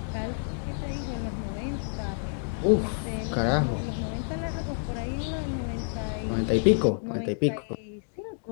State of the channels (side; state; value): right; silent; digital silence